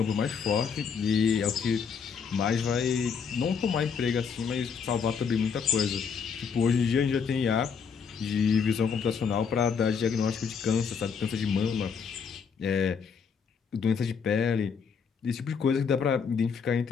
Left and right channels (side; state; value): right; quieter; 6.3 dB